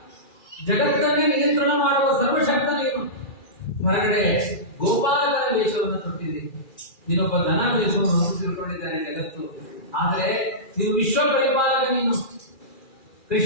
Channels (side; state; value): right; late; 2.4 ms